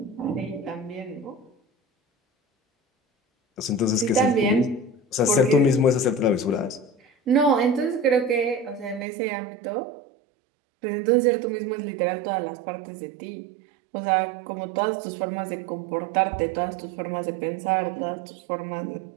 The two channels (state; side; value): drops out; left; at 9.1 s